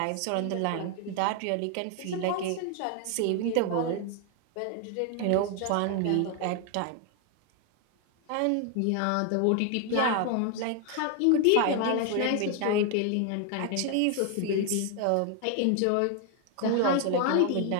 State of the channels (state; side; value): different; both; correlation 0.00